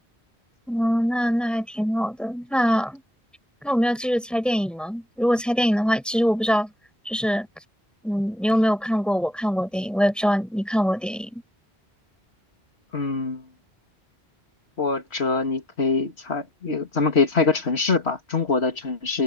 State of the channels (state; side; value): normal; both; correlation 0.60